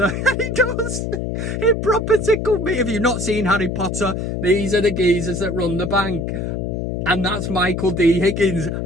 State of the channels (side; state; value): left; noise; hum, 3 dB below the sound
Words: He does. It proper tickled me. If you've not seen Harry Potter, these are the geezers that run the bank. And that's Michael D. Higgins.